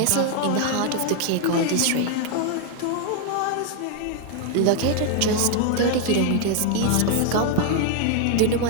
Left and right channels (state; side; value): different; both; correlation 0.00